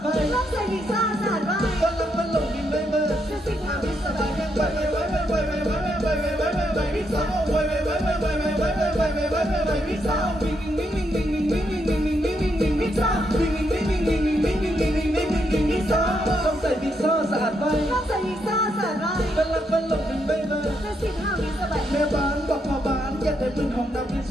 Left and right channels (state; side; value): normal; both; correlation 0.78